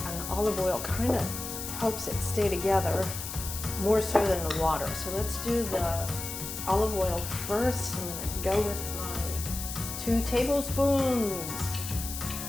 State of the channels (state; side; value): noise; left; hiss, 7 dB below the sound